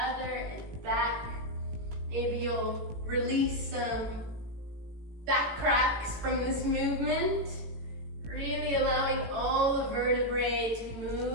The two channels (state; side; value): late; left; 18 ms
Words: and back. Maybe you'll release some back cracks from this movement. Really allowing all the vertebrae to